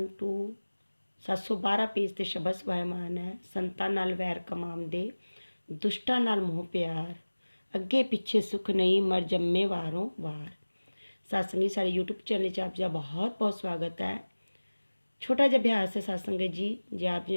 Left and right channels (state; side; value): inverted; both; correlation -1.00